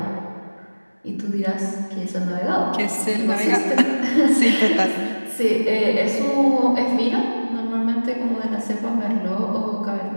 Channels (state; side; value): inverted; both; correlation -1.00